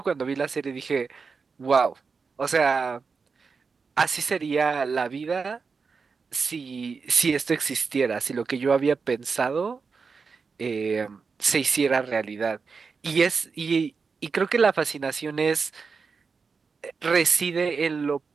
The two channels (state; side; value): quieter; left; 5.0 dB